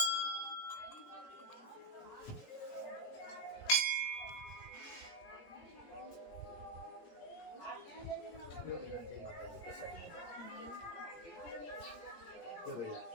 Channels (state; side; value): late; right; 17 ms